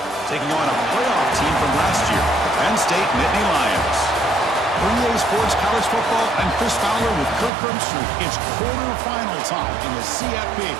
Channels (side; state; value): left; drops out; at 7.5 s